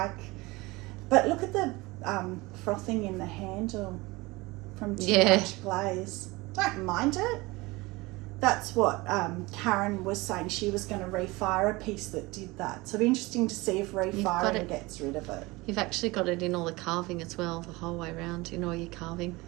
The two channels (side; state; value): left; quieter; 22.4 dB